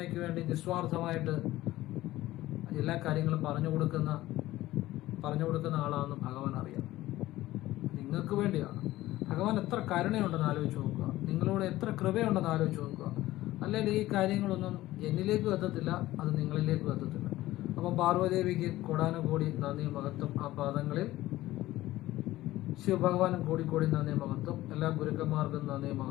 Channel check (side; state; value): right; quieter; 16.3 dB